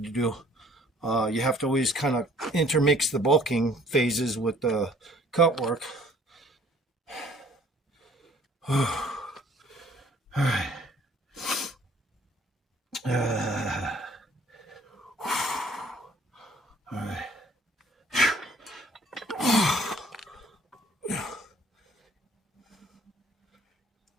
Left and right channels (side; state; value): both; normal; correlation 0.57